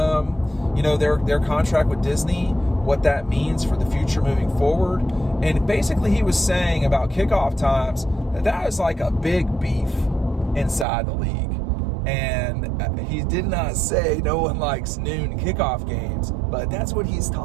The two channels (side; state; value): left; drops out; at 10.9 s